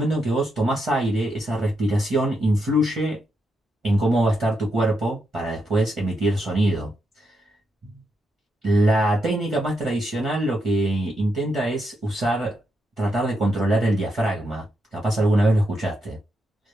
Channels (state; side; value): normal; both; correlation 0.82